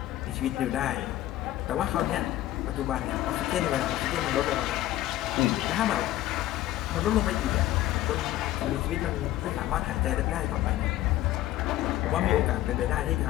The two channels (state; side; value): quieter; right; 14.6 dB